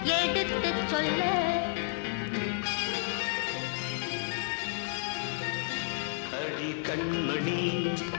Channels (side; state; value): right; silent; 57 dB below the other